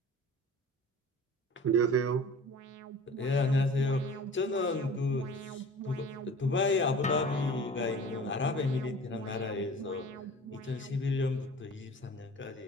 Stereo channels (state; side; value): normal; both; correlation 0.42